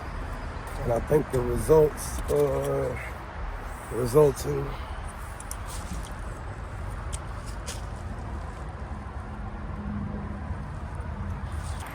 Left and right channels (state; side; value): identical; both; correlation 1.00